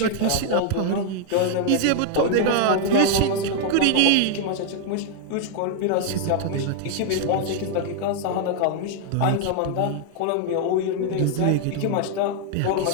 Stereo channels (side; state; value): both; different; correlation 0.00